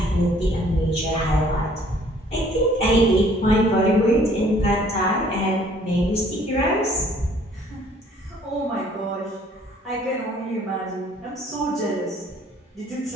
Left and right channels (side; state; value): both; normal; correlation 0.58